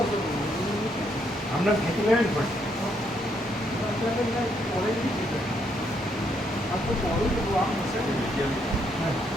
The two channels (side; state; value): both; normal; correlation 0.74